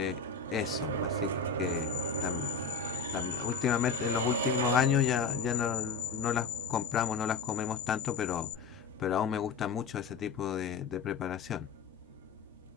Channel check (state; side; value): quieter; right; 5.0 dB